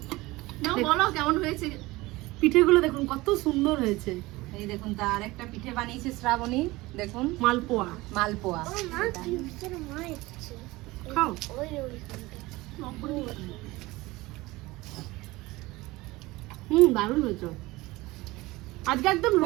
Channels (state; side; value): quieter; left; 20.5 dB